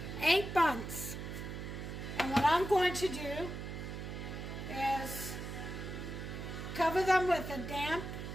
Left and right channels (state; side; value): noise; right; hum, 7 dB below the sound